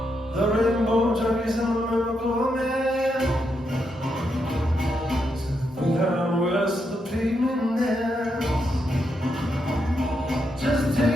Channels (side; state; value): both; normal; correlation 0.82